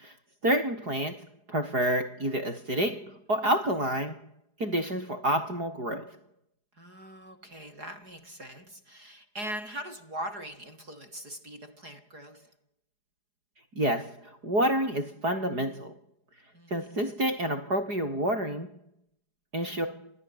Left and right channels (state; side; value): late; left; 4.8 ms